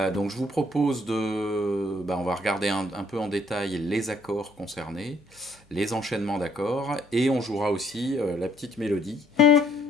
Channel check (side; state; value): both; normal; correlation 0.65